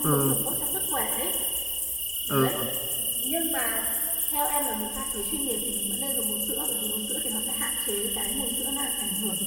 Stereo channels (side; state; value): both; identical; correlation 1.00